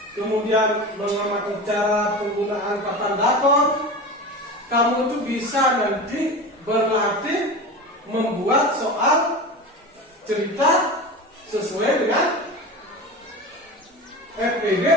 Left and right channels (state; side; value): normal; both; correlation 0.29